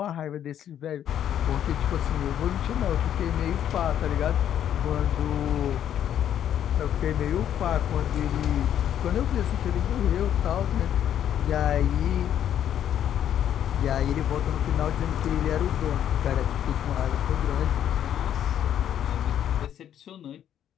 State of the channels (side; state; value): right; quieter; 10.2 dB